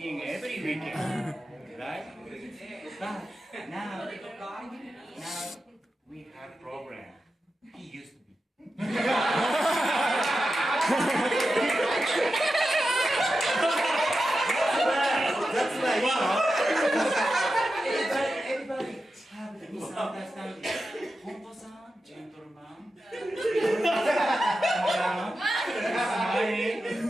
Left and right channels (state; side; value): normal; both; correlation 0.91